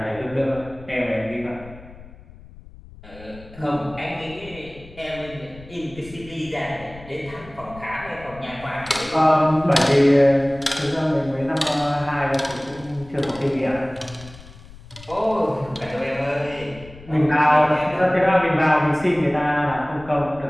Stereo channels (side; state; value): left; noise; rumble, 19 dB below the sound